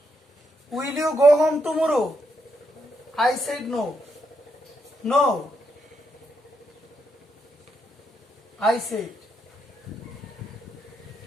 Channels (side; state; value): both; normal; correlation 0.79